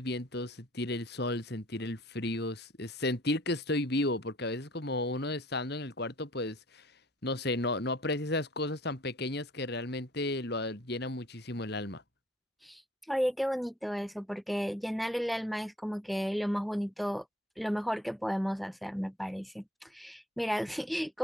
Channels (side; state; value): both; normal; correlation 0.56